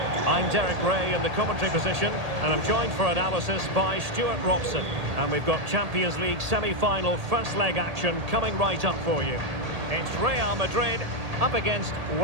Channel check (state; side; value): late; left; 1.8 ms